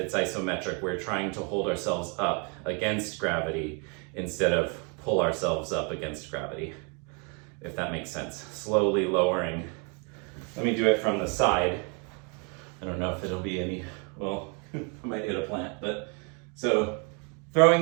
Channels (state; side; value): quieter; left; 35.5 dB